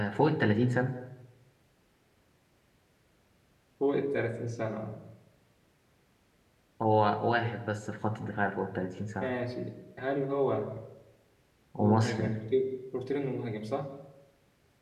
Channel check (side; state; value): both; identical; correlation 1.00